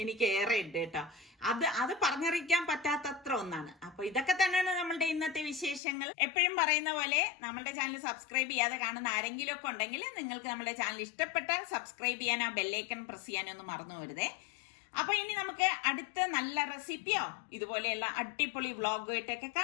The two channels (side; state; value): right; drops out; at 5.8 s